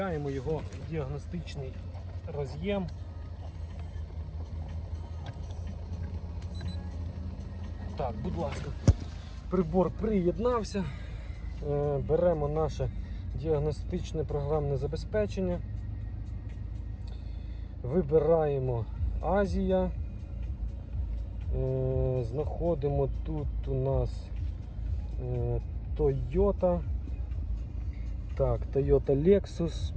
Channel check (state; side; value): identical; both; correlation 1.00